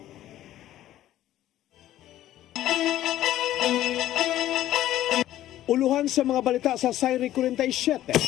Uluhan sa mga balita sa Sayri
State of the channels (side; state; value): right; quieter; 13.4 dB